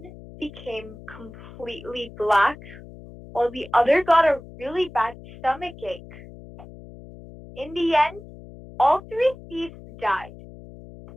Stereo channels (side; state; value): left; noise; hum, 17 dB below the sound